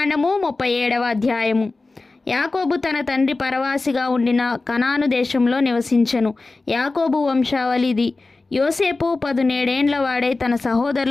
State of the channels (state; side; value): quieter; right; 3.5 dB